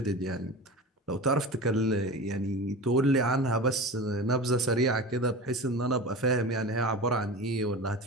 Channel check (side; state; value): both; normal; correlation 0.30